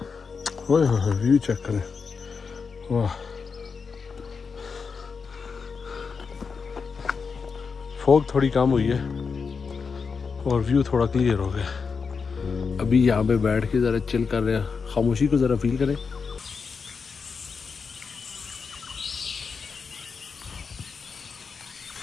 व्यू चेक करें, वाह। फॉग थोड़ी कम हुई है और व्यू थोड़ा क्लियर हो गया। अभी यहाँ पे बैठ के ज़रा चिल कर रहे हैं, खामोशी को ज़रा फील करें।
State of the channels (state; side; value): quieter; right; 5.4 dB